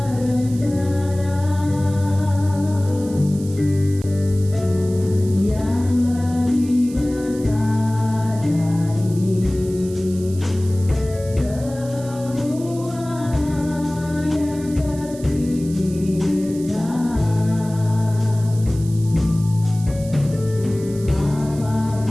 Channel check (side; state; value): right; noise; hiss, 19 dB below the sound